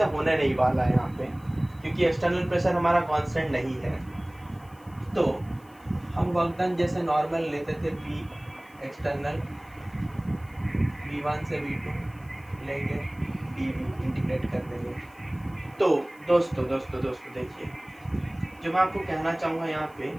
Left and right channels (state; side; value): noise; left; hiss, 29 dB below the sound